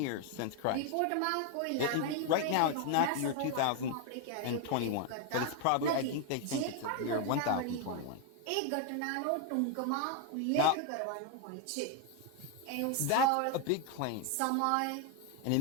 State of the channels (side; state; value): both; different; correlation 0.01